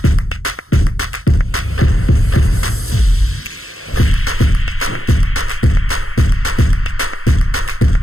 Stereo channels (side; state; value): right; late; 0.62 ms